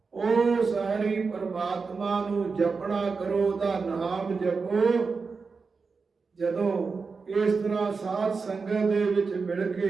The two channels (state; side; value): quieter; left; 4.7 dB